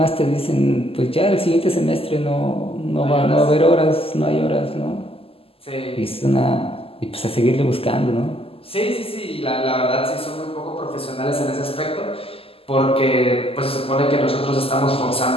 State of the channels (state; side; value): late; right; 0.28 ms